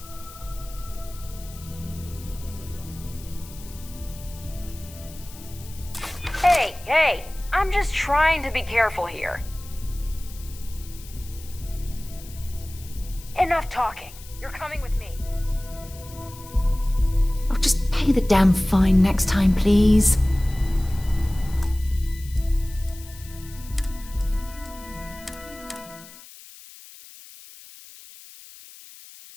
Hey, I'm just trying to be careful here. Enough talking. You're coming with me. Oh, just pay the damn fine next time, please.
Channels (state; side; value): noise; left; hiss, 18 dB below the sound